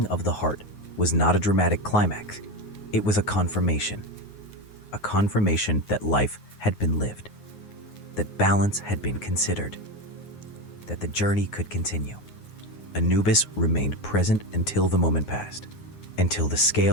of the heart was not a dramatic climax. It was a confirmation that life had been lived, that balance had been considered, that the journey could continue. Anubis remained present until the moment passed, until the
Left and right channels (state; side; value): late; right; 9.5 ms